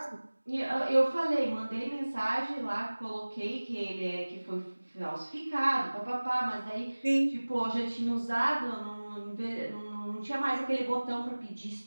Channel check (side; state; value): both; inverted; correlation -1.00